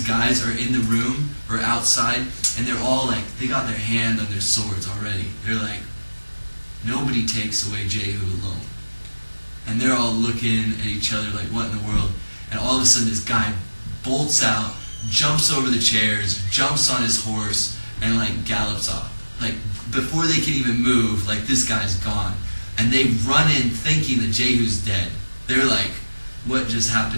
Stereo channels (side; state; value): both; inverted; correlation -1.00